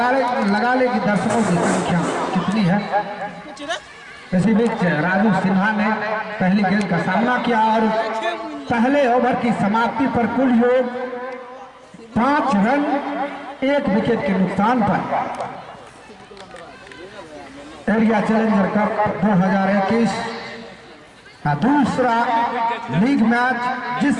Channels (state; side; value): identical; both; correlation 1.00